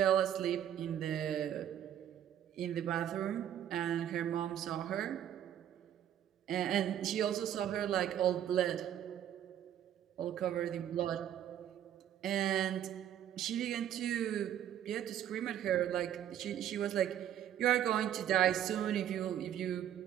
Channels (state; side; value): quieter; left; 10.6 dB